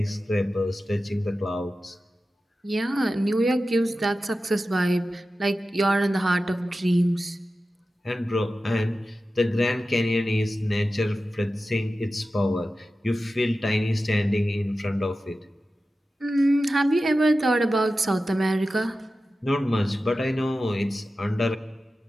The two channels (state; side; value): normal; both; correlation 0.93